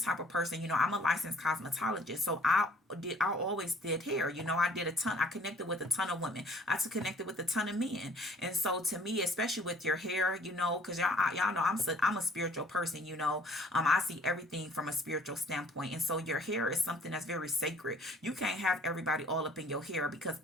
of person, you know, I'm a licensed cosmetologist. So I always did hair. You know, I connected with a ton of women. Connected with a ton of men. And so to me, especially with your hair, you know, because y'all know I'm a spiritual person, you know. I see everything from a spiritual standpoint. And so your hair is something that's very sacred. You can't have everybody all up in your hair because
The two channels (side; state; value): both; normal; correlation 0.56